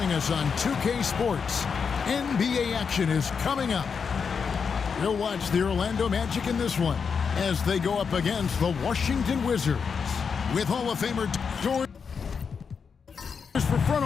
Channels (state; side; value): quieter; right; 6.0 dB